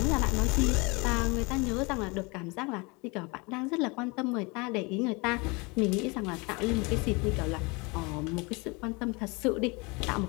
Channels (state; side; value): quieter; right; 27.7 dB